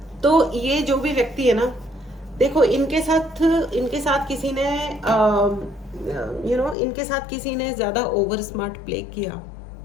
तो ये जो भी व्यक्ति है ना, देखो इनके साथ किसी ने इनके साथ किसी ने ज्यादा ओवर स्मार्ट प्ले किया,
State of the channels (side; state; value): right; drops out; at 6.8 s